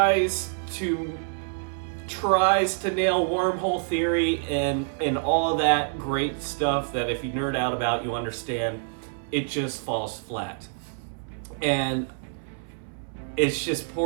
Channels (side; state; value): left; silent; 60 dB below the other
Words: to nail wormhole theory and all of that great stuff that if you nerd out about, you understand. It just falls flat. And it's just